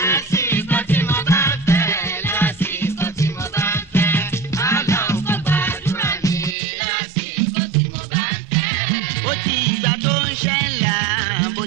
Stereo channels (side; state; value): left; drops out; at 6.6 s